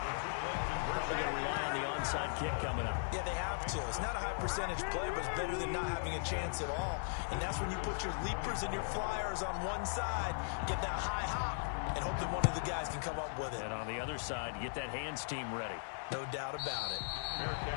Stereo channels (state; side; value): silent; right; 52 dB below the other